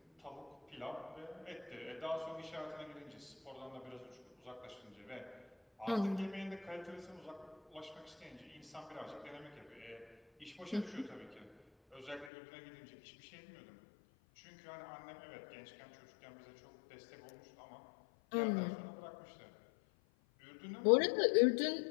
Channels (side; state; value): right; drops out; at 12.3 s